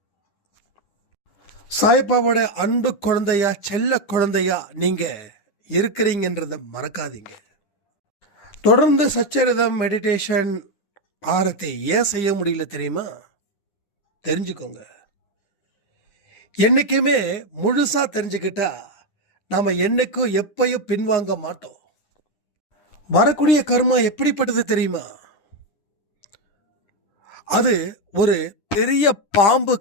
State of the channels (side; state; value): right; late; 10 ms